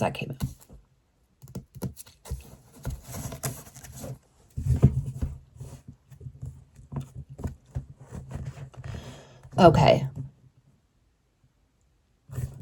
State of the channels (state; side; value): identical; both; correlation 1.00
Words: that came out. Okay.